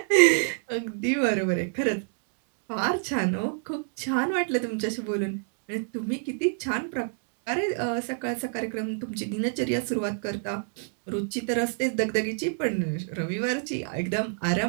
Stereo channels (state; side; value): silent; left; 58 dB below the other